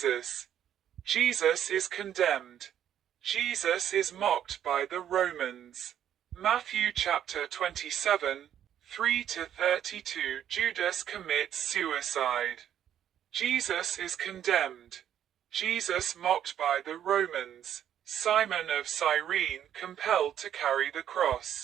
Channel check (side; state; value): left; quieter; 10.2 dB